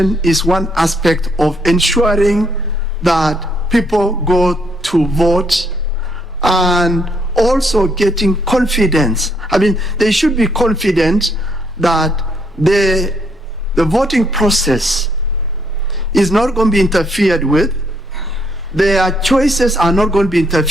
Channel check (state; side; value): normal; both; correlation 0.71